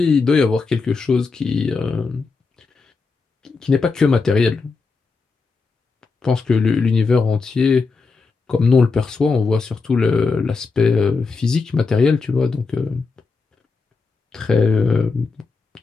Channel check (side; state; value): right; quieter; 4.4 dB